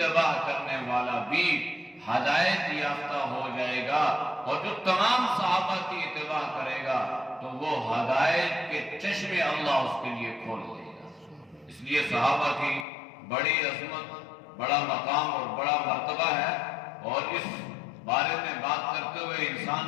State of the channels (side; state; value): right; drops out; at 12.9 s